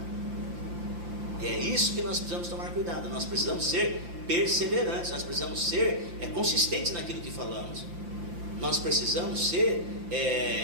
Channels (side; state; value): left; late; 5.8 ms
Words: E é isso que nós precisamos tomar cuidado. Nós precisamos ser perseverantes, nós precisamos ser consistentes naquilo que falamos. Nós precisamos ser